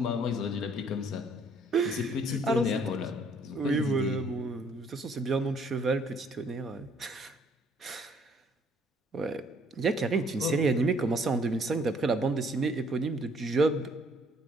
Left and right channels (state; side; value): normal; both; correlation 0.62